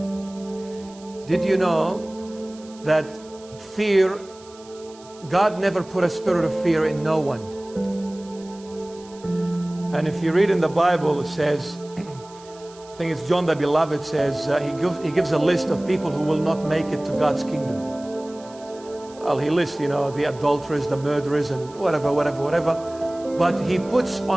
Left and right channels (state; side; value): noise; right; hiss, 23 dB below the sound